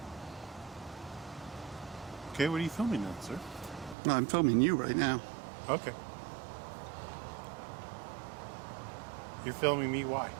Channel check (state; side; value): drops out; left; at 4.0 s